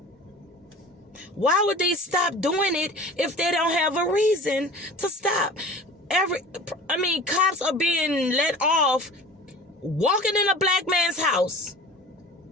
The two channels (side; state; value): both; normal; correlation 0.41